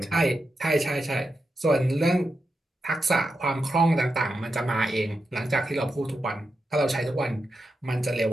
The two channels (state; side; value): normal; both; correlation 0.87